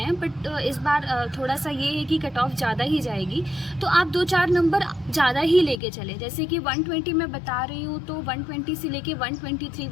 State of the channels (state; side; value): drops out; right; at 5.8 s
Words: बट इस बार थोड़ा सा ये है कि कट ऑफ ज़्यादा ही जाएगी, तो आप 2-4 नंबर ज़्यादा ही लेके चले। जैसे कि 120 मैं बता रही हूँ तो 120 से लेके 123,